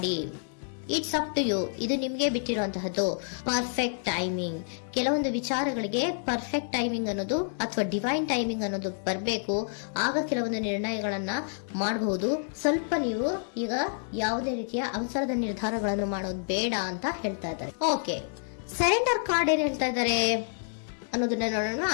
ಇಟ್ಸ್ ಅಪ್ ಟು ಯು, ಇದು ನಿಮ್ಗೆ ಬಿಟ್ಟಿರುವಂತಹದ್ದು. ಪರ್ಫೆಕ್ಟ್ ಟೈಮಿಂಗ್, ಕೆಲವೊಂದು ವಿಚಾರಗಳಿಗೆ ಪರ್ಫೆಕ್ಟ್ ಟೈಮಿಂಗ್ ಅನ್ನೋದು ಅಥವಾ ಡಿವೈನ್ ಟೈಮಿಂಗ್ ಅನ್ನೋದು ಬರಬೇಕು. ಆಗ ಕೆಲವೊಂದು ನಿರ್ಣಯಗಳನ್ನ ಮಾಡಬಹುದು. ಸ್ವಲ್ಪ ನೀವು ಈಗ ಯಾವುದೇ ರೀತಿಯ ಅವಸರದ ನಿರ್ಧಾರಗಳನ್ನು ಮಾಡೋದು ಬೇಡ ಅಂತ ಹೇಳ್ತಾ ಇದ್ದಾರೆ. ಓಕೆ, ಸರೆಂಡರ್ ಕಾರ್ಡ್ ಏನ್ ಹೇಳ್ತಾ ಇದ್ದಾರೆ ಅನ್ನೋದನ್ನ ನೋಡೋಣ.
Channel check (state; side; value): silent; right; digital silence